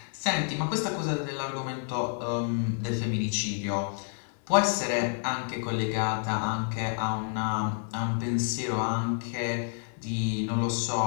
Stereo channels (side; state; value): right; silent; 58 dB below the other